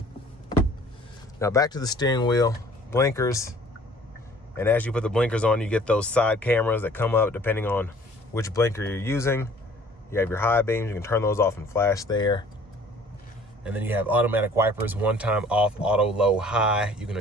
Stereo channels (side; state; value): both; normal; correlation 0.53